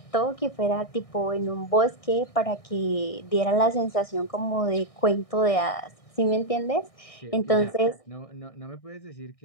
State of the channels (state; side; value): late; right; 1.6 ms